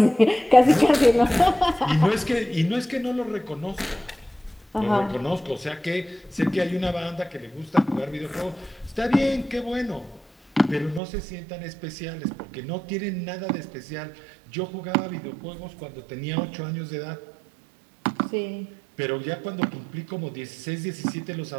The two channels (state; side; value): drops out; left; at 11.0 s